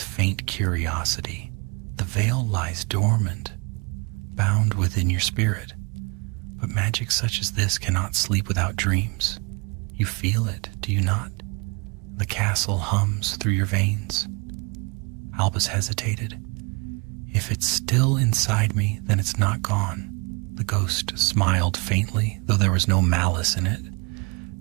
curiosity. The veil lies dormant, bound within your spirit. But magic such as this cannot sleep without dreams. You feel it, do you not? The castle hums through your veins. Albus hesitated. If it's still inside me, then it's not gone. The ghost smiled faintly, though there was no malice in it.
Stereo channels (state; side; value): quieter; left; 30.7 dB